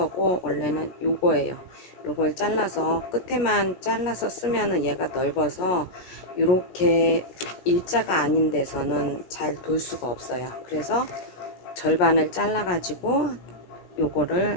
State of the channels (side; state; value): right; late; 17 ms